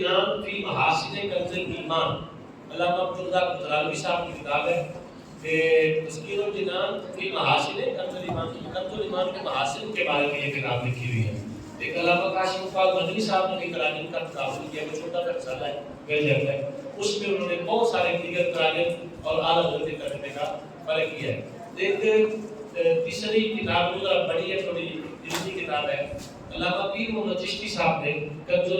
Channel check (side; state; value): both; identical; correlation 1.00